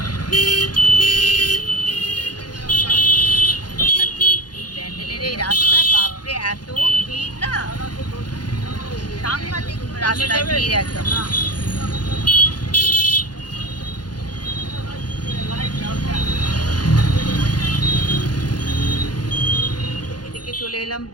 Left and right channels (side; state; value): right; late; 0.70 ms